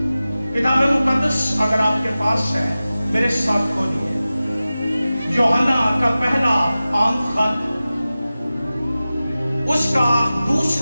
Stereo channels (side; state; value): both; inverted; correlation -0.96